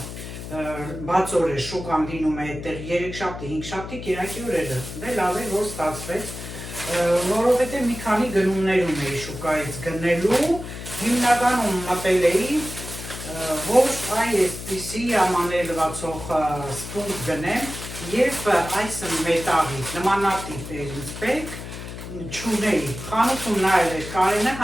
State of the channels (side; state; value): left; noise; hum, 10 dB below the sound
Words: բաց օր է շուկան լինում է այդտեղ 3 շաբթի, 5 շաբթի, կիրակի օրերը, դե լավ է, որ ստացվեց, որովհետև մի քանի գնումներ ունեի շուկայից գնելու, հիմնականում մտել էի, որ այսպիսի ամանելվածող սպունգ գնեմ և այս մետաղից, նմանատիպ էր ինձ պետք, չունեի, խանութում նայել էր Կարենը,